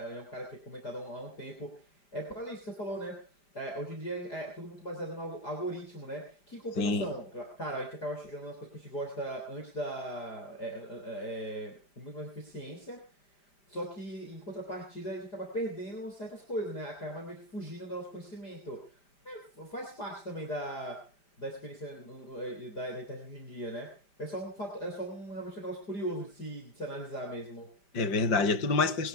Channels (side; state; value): right; late; 5.0 ms